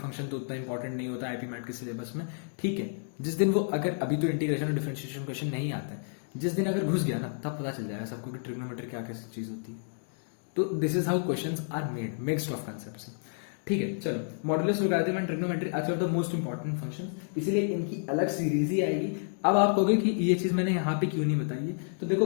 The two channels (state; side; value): silent; right; digital silence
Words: तो उतना इंपॉर्टेंट नहीं होता आईपी मैट के सिलेबस में, ठीक है। जिस दिन वो अगर अभी तो इंटीग्रेशन और डिफरेंशिएशन क्वेश्चन नहीं आते, जिस दिन अगर घुस गया ना तब पता चल जाएगा सबको कि ट्रिग्नोमेट्री क्या कैसी चीज होती है। तो this is how questions are made, mixed of concepts. ठीक है, चलो modulus, logarithm and trigonometry are of the most important function, इसीलिए इनकी अलग सीरीज ही आएगी। अब आप कहोगे कि ये चीज मैंने यहाँ पे क्यों नहीं बताई है, तो